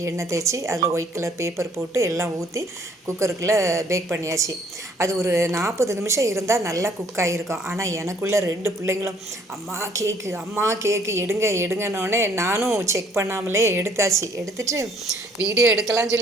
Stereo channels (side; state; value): both; normal; correlation 0.61